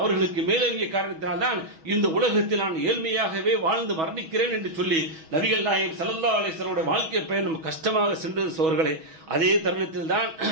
மேலங்கிய காரணத்தினால்தான் இந்த உலகத்தில் நான் ஏழ்மையாகவே வாழ்ந்து மரணிக்கிறேன் என்று சொல்லி நபிகள் நாயகம் ஸல்லல்லாஹு அலைஹி வஸல்லம் வாழ்க்கை பயணம் கஷ்டமாக சென்றது சோர்களே. அதே தருணத்தில் தான்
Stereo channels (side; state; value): left; late; 6.2 ms